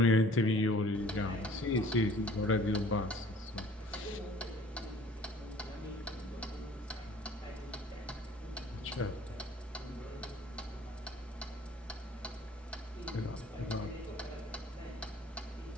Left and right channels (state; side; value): normal; both; correlation 0.52